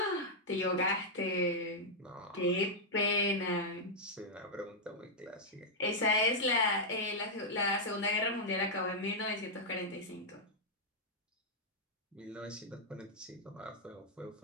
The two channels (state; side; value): normal; both; correlation -0.06